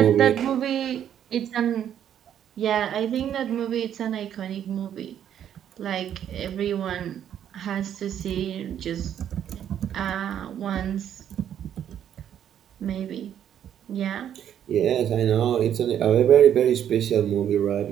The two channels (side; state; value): left; quieter; 9.8 dB